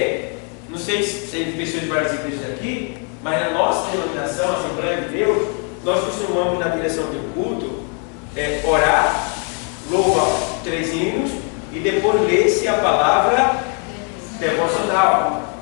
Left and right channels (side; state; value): right; quieter; 39.6 dB